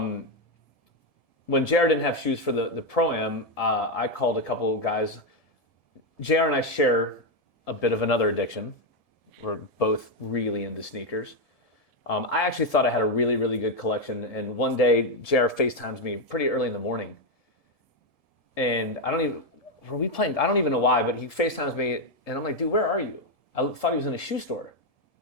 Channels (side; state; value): right; late; 1.7 ms